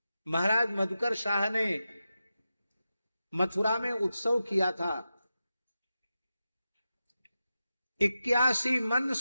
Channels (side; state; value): both; inverted; correlation -0.91